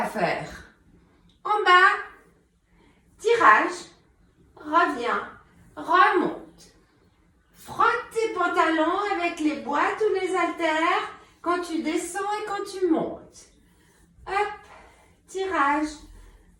faire en bas, tirage, reviens, remonte. Frotte tes pantalons avec les boîtes ou les haltères quand tu descends et quand tu montes. Hop, tirage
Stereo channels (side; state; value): both; identical; correlation 1.00